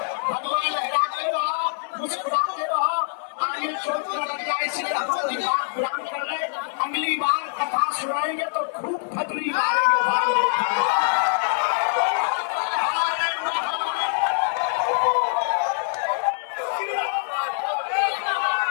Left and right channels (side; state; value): right; silent; 62 dB below the other